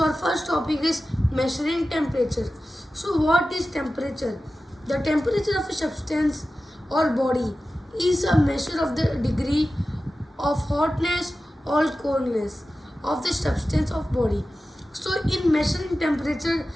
our first topic is measuring temperature. So what is temperature? The temperature of a substance or body is a measure of the degree of hotness or coldness of the substance of body. So in measuring temperature,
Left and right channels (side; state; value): both; normal; correlation 0.94